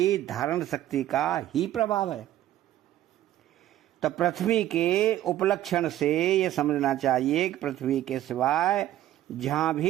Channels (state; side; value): quieter; left; 13.3 dB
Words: धारण शक्ति का ही प्रभाव है। तो पृथ्वी के उपलक्षण से यह समझना चाहिए कि पृथ्वी के सिवाय जहां